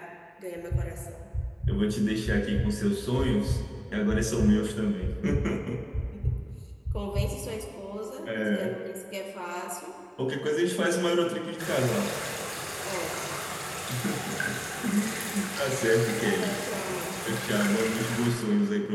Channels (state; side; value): identical; both; correlation 1.00